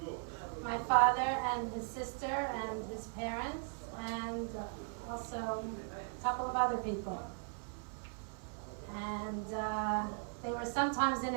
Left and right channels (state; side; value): silent; left; 52 dB below the other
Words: my father and his sister and his parents and also a couple of other people. And they were sometimes in